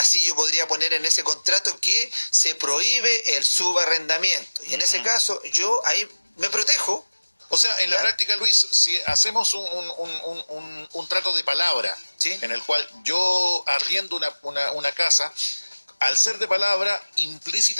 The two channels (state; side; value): inverted; both; correlation -1.00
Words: yo podría poner en ese contrato que se prohíbe el subarrendamiento. Y en ese caso yo ahí me protejo. O sea, en la práctica, Luis, si hacemos un trato de palabra, ¿sí?, en el cual yo arriendo una casa, al ser de palabra,